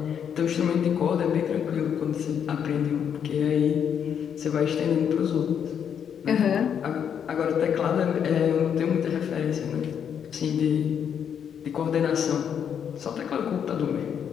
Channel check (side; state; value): right; quieter; 8.2 dB